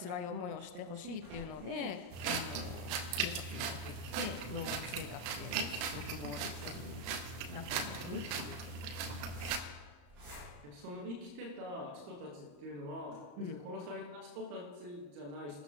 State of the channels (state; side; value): late; left; 34 ms